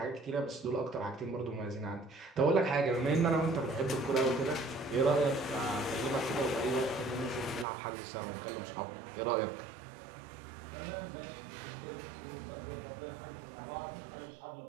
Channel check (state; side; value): drops out; left; at 7.7 s